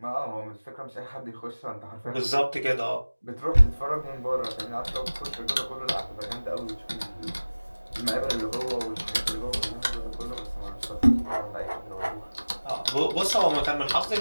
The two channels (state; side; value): inverted; both; correlation -1.00